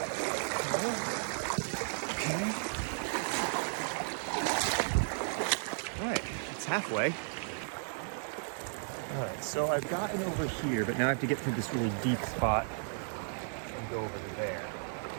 Okay. All right, it's halfway. All right, so I've gotten over here, but now I have to get through this really deep spot and go over to there.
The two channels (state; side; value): silent; left; digital silence